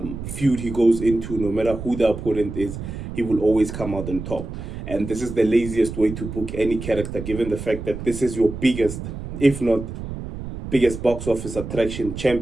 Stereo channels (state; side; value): noise; right; rumble, 8 dB below the sound